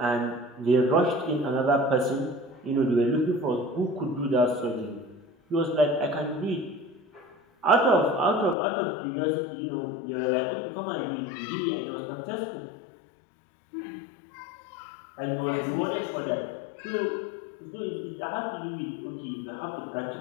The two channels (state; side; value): drops out; right; at 8.6 s